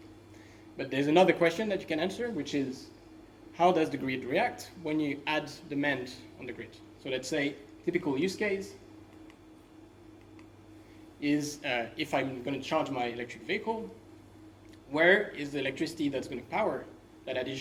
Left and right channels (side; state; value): both; identical; correlation 1.00